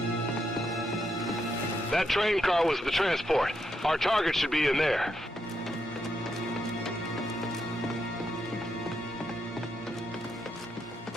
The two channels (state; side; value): normal; both; correlation 0.80